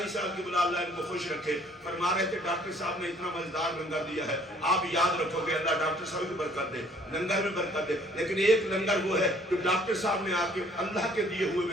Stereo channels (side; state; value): both; normal; correlation 0.59